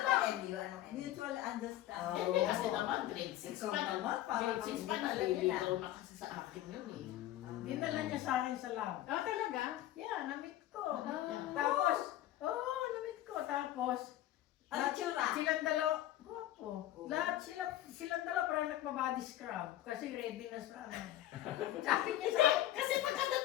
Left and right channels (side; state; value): right; quieter; 13.8 dB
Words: lang. MU? Anong MU? Mutual understanding. Hindi kasi naman, grade 6 Ikaw pa naman, parang Grade 6 pa hindi naliligaw na kasi sa akin yun eh. Dinala niya sa akin sa lab. Ah, talaga? Yeah, namit ko. Yeah. Tapos, namit ko. Tapos, Ano tsura? silang dalawa, guwapo. Lahat silang dalawa parang nagpa-body scrub. Kasi ready na sa ano. Sabi niya sa Hindi, kasi